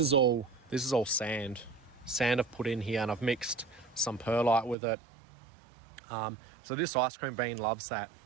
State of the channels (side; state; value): left; drops out; at 4.8 s